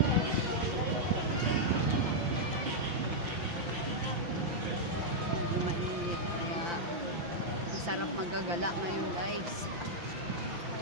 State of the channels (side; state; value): left; late; 5.8 ms